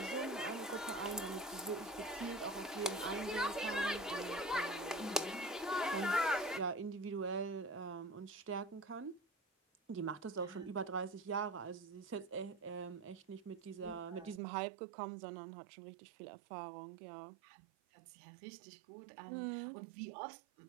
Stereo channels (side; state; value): left; drops out; at 14.4 s